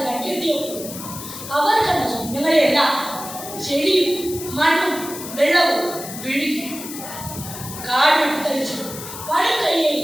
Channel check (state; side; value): noise; left; hiss, 10 dB below the sound